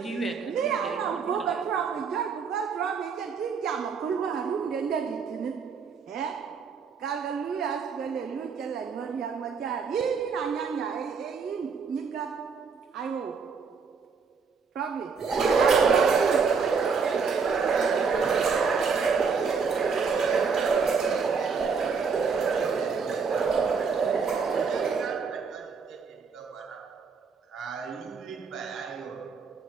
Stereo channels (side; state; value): left; quieter; 5.5 dB